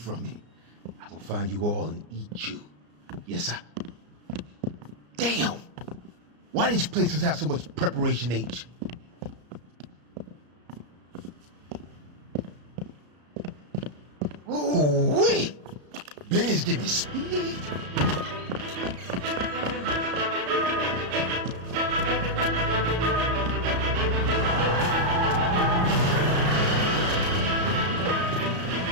me. I'm gonna find you all and eat you. Yes, sir. Damn! Why these places have so much preparation H? Ooh, wait! Benny's giving me speed.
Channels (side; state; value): left; late; 34 ms